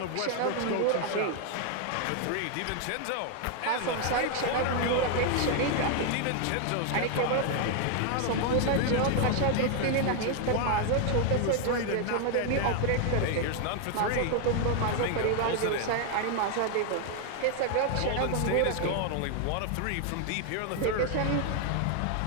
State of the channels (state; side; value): different; both; correlation 0.00